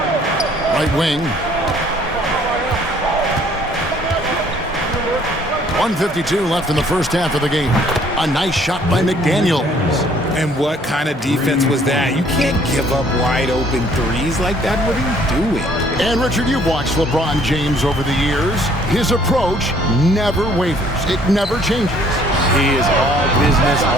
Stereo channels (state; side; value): normal; both; correlation 0.60